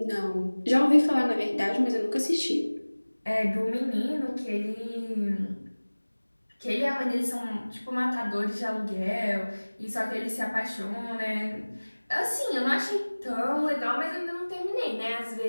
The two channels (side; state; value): both; inverted; correlation -1.00